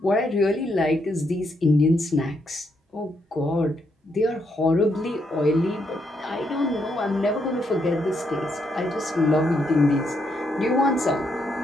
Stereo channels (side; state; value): both; normal; correlation 0.77